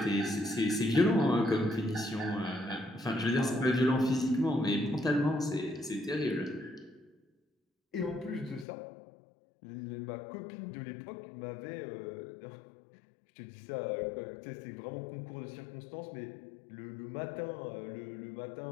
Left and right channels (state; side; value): drops out; right; at 8.7 s